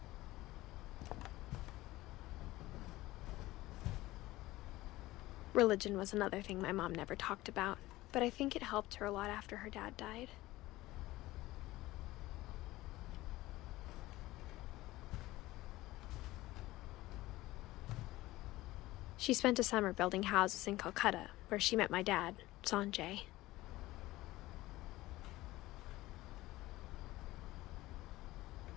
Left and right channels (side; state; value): right; quieter; 17.8 dB